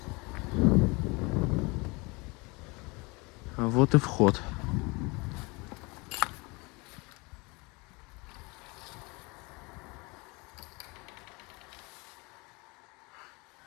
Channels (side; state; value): right; quieter; 26.8 dB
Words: Вот и вход.